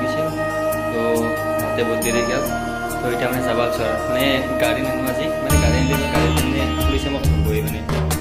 গৈছিল, তো তাতে বহুত দেৰি গ'ল। তো এতিয়া মানে যাব আছোঁ আৰু মানে গাড়ী নিনো আজি, মানে গাড়ী আনিলে গাড়ী মানে পুলিচে মোক ধৰিবই, মানে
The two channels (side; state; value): both; identical; correlation 1.00